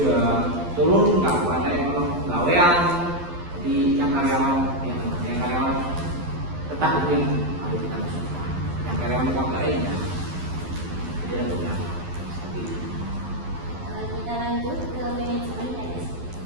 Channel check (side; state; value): left; late; 12 ms